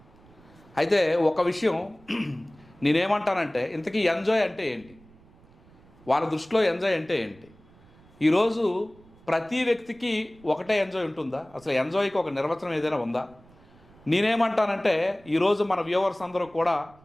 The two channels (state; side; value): noise; right; rumble, 26 dB below the sound